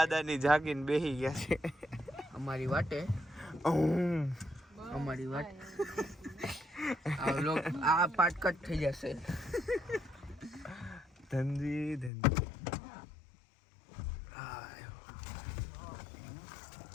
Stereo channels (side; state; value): right; drops out; at 12.1 s